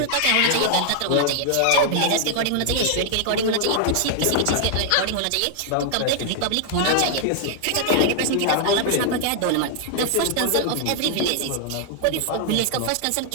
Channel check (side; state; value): both; different; correlation 0.00